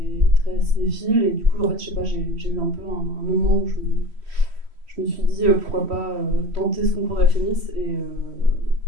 très cinéphile et du coup, en fait, je sais pas, j'ai eu un peu un moment où je me suis dit pourquoi pas tenter ce concours de la Fémis et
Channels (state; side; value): late; left; 3.1 ms